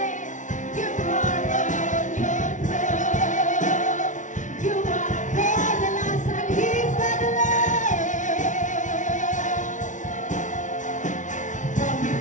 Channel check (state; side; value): late; right; 0.37 ms